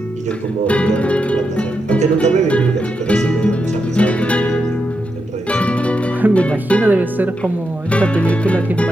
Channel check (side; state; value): both; normal; correlation 0.85